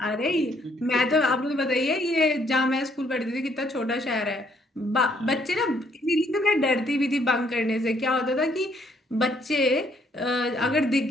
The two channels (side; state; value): both; normal; correlation 0.68